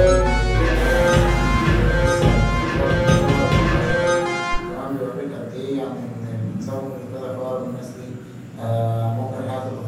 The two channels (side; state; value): both; identical; correlation 1.00